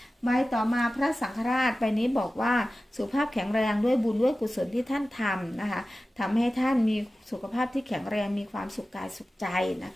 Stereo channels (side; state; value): both; normal; correlation 0.95